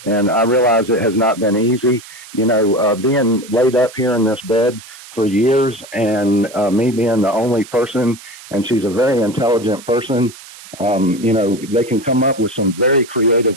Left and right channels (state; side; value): noise; right; hiss, 18 dB below the sound